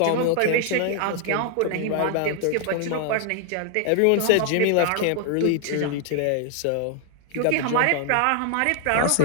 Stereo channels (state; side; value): different; both; correlation 0.00